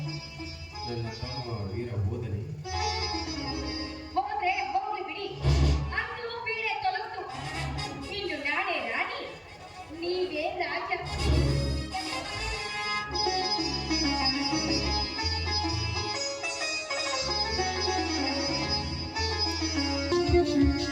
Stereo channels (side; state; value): both; identical; correlation 1.00